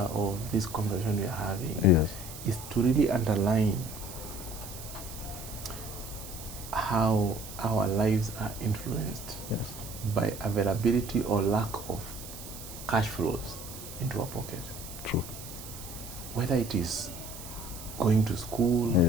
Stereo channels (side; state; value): right; noise; hiss, 13 dB below the sound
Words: of this conversation we are having is to really underline how our lives are influenced by availability or lack of cash flows into our pocket. True. Whether it is going to school,